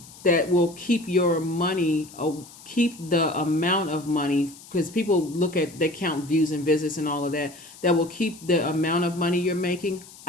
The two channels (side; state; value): left; noise; hiss, 20 dB below the sound